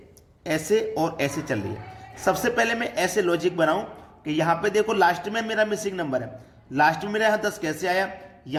ऐसे और ऐसे चल रही है। सबसे पहले मैं ऐसे लॉजिक बनाऊं कि यहाँ पे देखो लास्ट में मेरा मिसिंग नंबर है। लास्ट में मेरा यहाँ 10 कैसे आया,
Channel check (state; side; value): identical; both; correlation 1.00